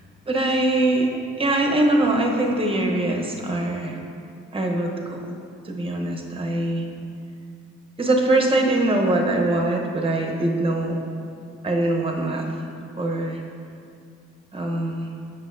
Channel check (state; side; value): normal; both; correlation 0.60